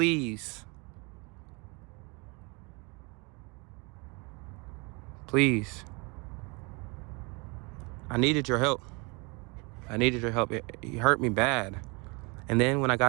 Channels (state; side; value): quieter; left; 29.8 dB